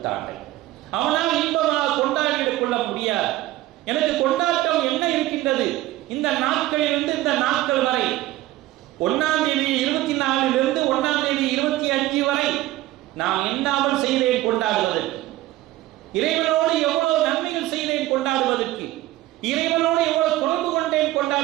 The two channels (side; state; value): left; quieter; 16.3 dB